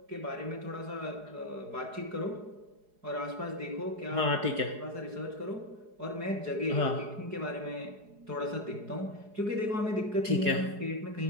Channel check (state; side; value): late; left; 4.8 ms